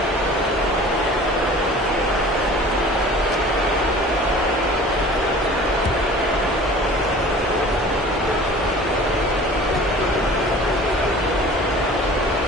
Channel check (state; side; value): normal; both; correlation 0.44